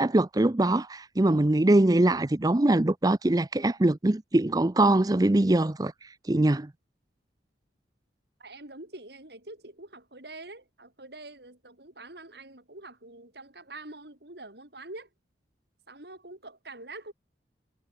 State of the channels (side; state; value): both; normal; correlation 0.81